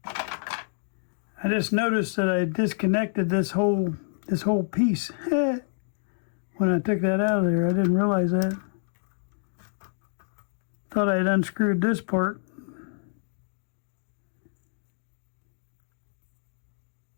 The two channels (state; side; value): silent; right; digital silence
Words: I just noticed that I disconnected this whole piece. When I took that out of there, I didn't realize that. Thought I had unscrewed this part.